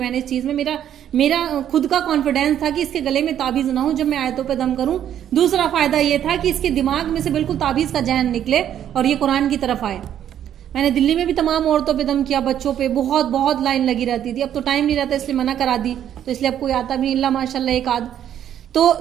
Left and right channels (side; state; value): left; quieter; 10.3 dB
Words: نے اس چیز میں، میرا خود کا کانفیڈینس تھا کہ اس کے گلے میں تعویذ نہ ہو جب میں آیتوں پہ دم کروں. دوسرا فائدہ یہ تھا کہ اس کے دماغ میں سے بالکل تعویذ کا ذہن نکلے اور یہ قرآن کی طرف آئے. میں نے دلی میں بھی تمام عورتوں پہ دم کیا، بچوں پہ بہت لائن لگی رہتی تھی. اب تو ٹائم نہیں رہتا اس لیے منع کرا دی، تو اس لیے اب کوئی آتا بھی نہیں، اللہ ماشاء اللہ ایک آدھ. تو